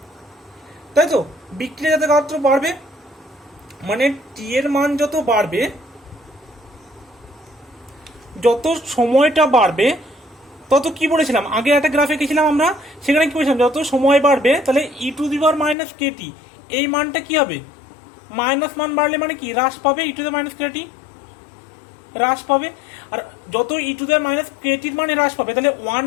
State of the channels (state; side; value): drops out; right; at 15.8 s